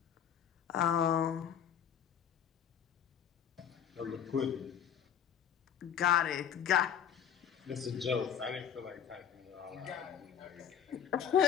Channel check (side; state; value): right; quieter; 8.8 dB